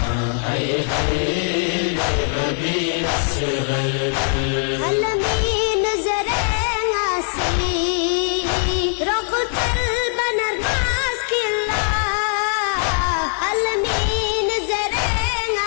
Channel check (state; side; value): silent; right; 58 dB below the other